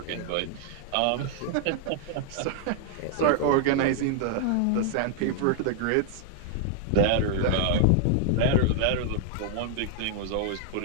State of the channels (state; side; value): different; both; correlation 0.00